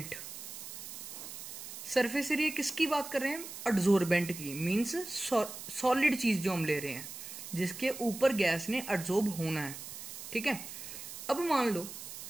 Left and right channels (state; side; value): noise; right; hiss, 10 dB below the sound